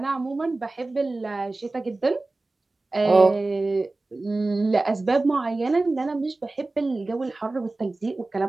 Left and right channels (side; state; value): left; quieter; 3.2 dB